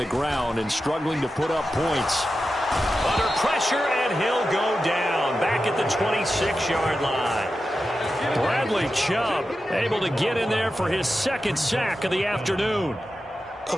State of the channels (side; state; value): both; normal; correlation 0.91